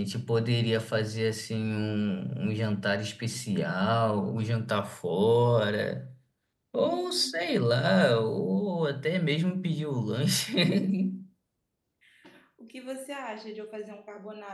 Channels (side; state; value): both; identical; correlation 1.00